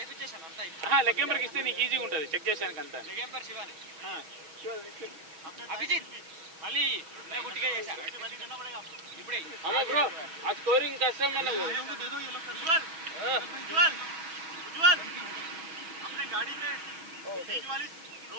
లెగ్ ఎంపైర్ కి ఇస్తే నీకు ఈజీగా ఉంటుంది చెక్ చేసానికి అంతా లెగ్ ఎంపైర్ శివాని అభిజిత్ మళ్ళీ నేను గుట్టిగా చేశా ఇప్పుడే అమ్మా బ్రో ఆ స్కోరింగ్ కష్టం మనకు दे दो ये लोग उज्जवल उज्जवल अपने गाड़ी में बीच वाली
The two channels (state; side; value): late; left; 6.2 ms